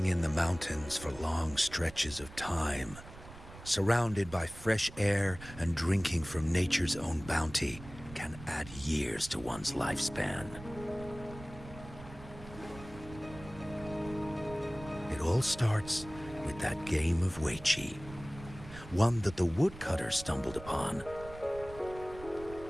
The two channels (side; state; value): right; noise; rumble, 15 dB below the sound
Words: in the mountains for long stretches of time, surrounded by fresh air and drinking from nature's own bounty, can add years to one's lifespan. It all starts with that game of Wei Chi, one that the woodcutter stumbled upon.